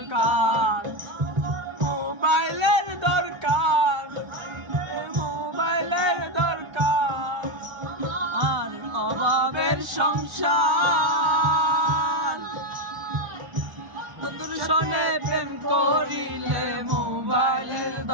মোবাইলের দরকার, মোবাইলের দরকার। আর অভাবের সংসার, বন্ধুর সনে প্রেম করিলে মোবাইলের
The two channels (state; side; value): late; left; 1.3 ms